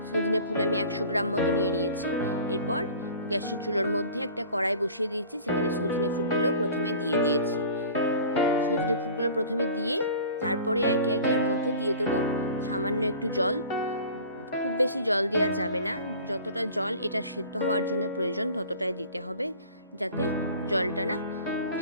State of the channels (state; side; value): inverted; both; correlation -0.43